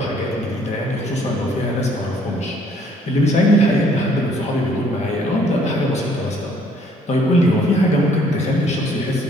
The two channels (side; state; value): both; normal; correlation 0.62